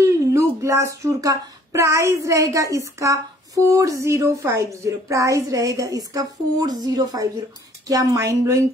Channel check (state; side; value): normal; both; correlation 0.58